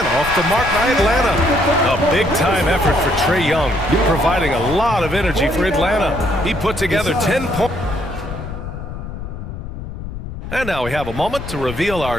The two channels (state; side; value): noise; left; rumble, 9 dB below the sound